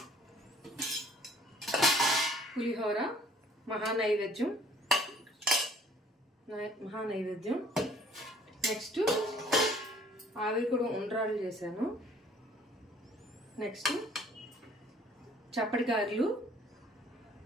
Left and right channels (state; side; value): normal; both; correlation 0.57